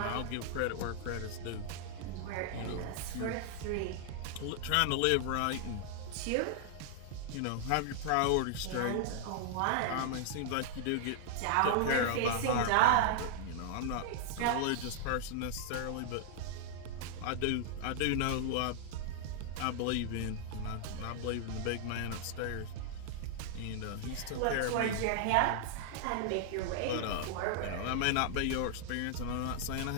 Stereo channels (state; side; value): different; both; correlation -0.01